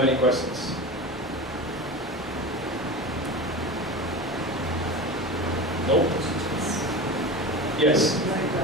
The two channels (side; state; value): both; normal; correlation 0.28